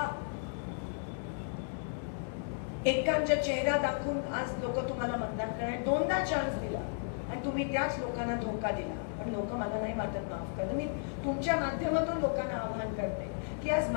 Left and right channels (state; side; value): silent; right; digital silence